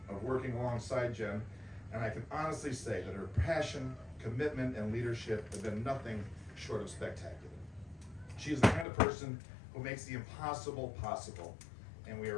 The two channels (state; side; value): drops out; right; at 8.8 s